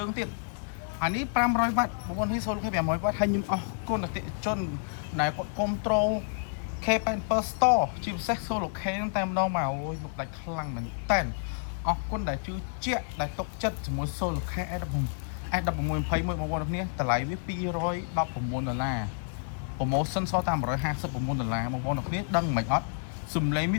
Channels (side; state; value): right; silent; digital silence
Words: ងទៀតអានេះ500វ៉ាត់បងប្អូននេះ Solar Care 500វ៉ាត់ហើយខ្ញុំអរគុណអតិថិជនដែលគាត់គ្រប់ត្រូល K87 Store ជាពិសេស Solar Care តែម្ដងមកអូយលោកដាច់ខ្លាំងមែនតើអរគុណដែលជឿជាក់ដែលទុកចិត្តជាមួយ Solar Care S1621 បងប្អូនគ្នាតម្លៃវា$219 promotion សល់តែ$159បងប្អូនគ្នាដឹងមិនអត់សំឡេងវា